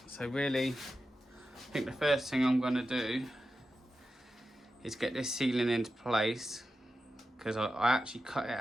So really, I think the first thing I'm going to do is get this ceiling into place, because I actually cut it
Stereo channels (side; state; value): both; normal; correlation 0.91